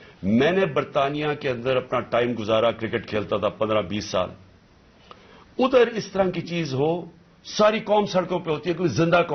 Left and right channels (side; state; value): both; identical; correlation 1.00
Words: میں نے برطانیہ کے اندر اپنا ٹائم گزارا، کرکٹ کھیلتا تھا 15-20 سال. ادھر اس طرح کی چیز ہو، ساری قوم سڑکوں پہ ہوتی ہے، کوئی زندہ